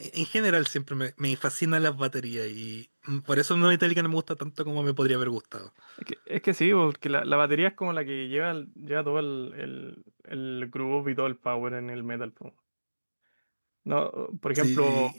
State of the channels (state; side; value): inverted; both; correlation -1.00